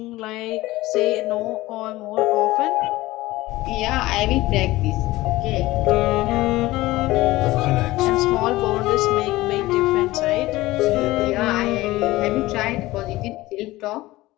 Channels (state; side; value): quieter; right; 18.3 dB